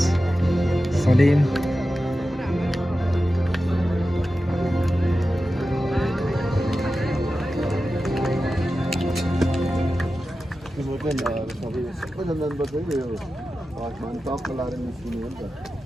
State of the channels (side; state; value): both; normal; correlation 0.93